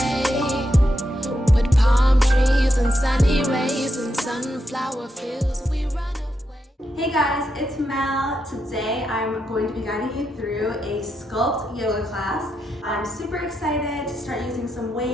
with palm trees and sunny rays and sunflower fields. We run away. Hey guys, it's Mel. Today I'm going to be guiding you through a Sculpt yoga class. I'm super excited to start using some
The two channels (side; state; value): both; normal; correlation 0.84